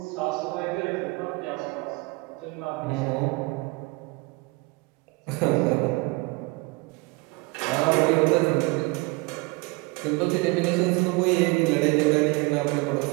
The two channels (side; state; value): left; quieter; 25.9 dB